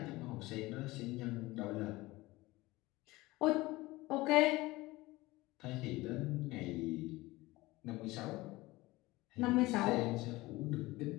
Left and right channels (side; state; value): right; quieter; 20.1 dB